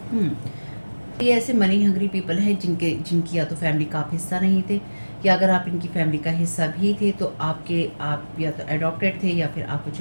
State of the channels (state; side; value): inverted; both; correlation -1.00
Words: ये ऐसे मनी हंग्री पीपल हैं जिनकी या तो फैमिली का आप हिस्सा नहीं थे, या अगर आप इनकी फैमिली का हिस्सा भी थे तो आप या तो एडॉप्टेड थे या फिर आपको